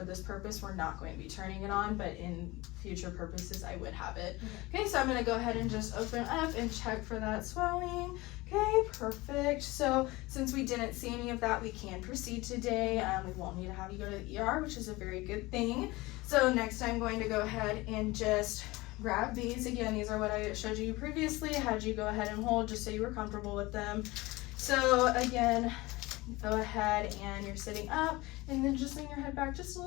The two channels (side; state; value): right; quieter; 21.2 dB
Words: this purpose, we're not going to be turning it on, but in future purposes, I would have it. Okay, so I'm going to go ahead and just open up and check for that swelling. Okay, perfect. So since we didn't see any of that, we can proceed today. We won't need to have you go to the ER, which is a very good thing. So next I'm going to go ahead and just grab these. Again, these are what I showed you previously. I had you go ahead and hold just so you were comfortable with them. So again, go ahead and you're sitting up and then just lean your head back just a